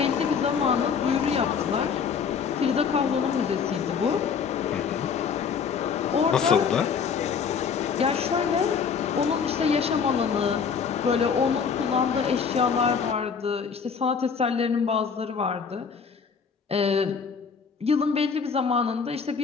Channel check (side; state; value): right; quieter; 6.2 dB